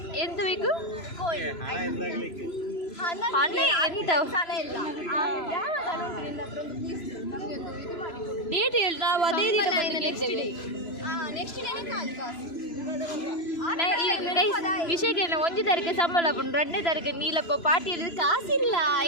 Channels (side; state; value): right; late; 3.0 ms